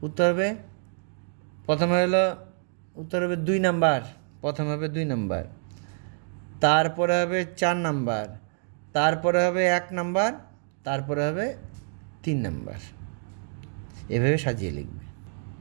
উত্তর হবে প্রথমে হলো, উত্তর হবে 2 নাম্বার, প্রথমে হবে 2 নাম্বার, তারপরে হবে 4 নাম্বার, তারপরে হবে 1 নাম্বার, তারপরে হবে 3 নাম্বার। এভাবে সাজিয়ে লিখবে।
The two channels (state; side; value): silent; left; 60 dB below the other